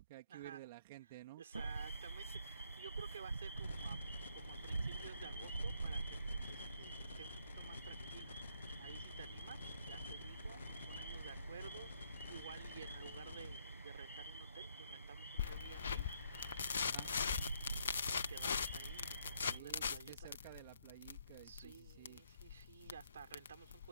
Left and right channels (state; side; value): inverted; both; correlation -0.72